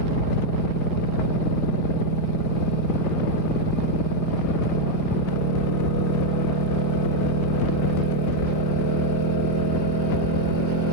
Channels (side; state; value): right; late; 4.4 ms